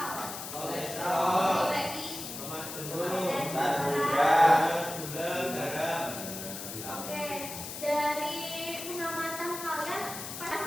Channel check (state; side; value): noise; left; hiss, 8 dB below the sound